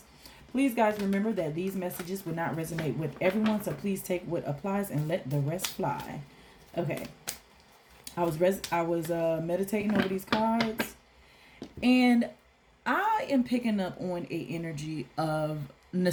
Please, guys, remember that these messages will not resonate with everyone, so please take what applies and let the rest fly. Okay. I was meditating over these cards, and I am picking up on a energy of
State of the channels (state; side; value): identical; both; correlation 1.00